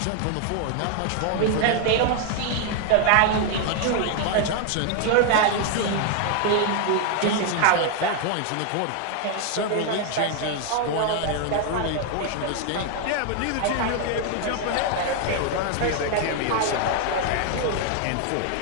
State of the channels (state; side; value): different; both; correlation 0.00